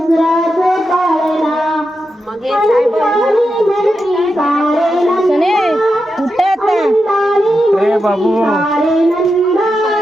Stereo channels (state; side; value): normal; both; correlation 0.88